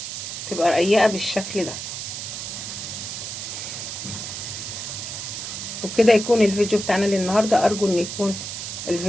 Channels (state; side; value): noise; right; hiss, 6 dB below the sound